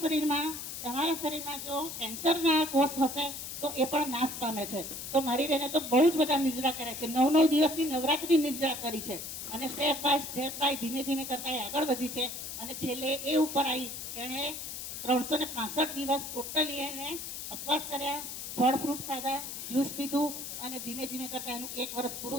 શરીરમાં જો કેન્સરના કોષ હશે તો એ પણ નાશ પામે છે. તો મારી બહેને તો બહુ જ બધા નિર્જળા કર્યા છે, 9 દિવસની નવરાત્રી નિર્જળા કરી છે અને સ્ટેપ બાય ધીમે ધીમે કરતા એ આગળ વધી છે. અને છેલ્લે એ ઉપર આવી એણે 365 દિવસ ટોટલી એને ઉપવાસ કર્યા, ફળ ફ્રૂટ ખાધા, જ્યુસ પીધું અને ધીમે ધીમે કરતા એનું 1 વર્ષ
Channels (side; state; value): left; noise; hiss, 7 dB below the sound